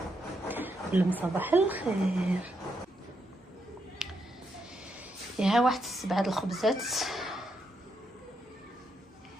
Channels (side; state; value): both; normal; correlation 0.80